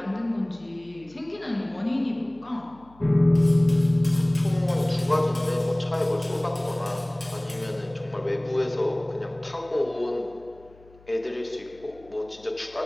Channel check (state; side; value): noise; left; hum, 26 dB below the sound